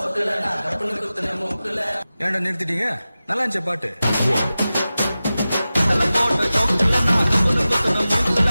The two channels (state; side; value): inverted; both; correlation -0.95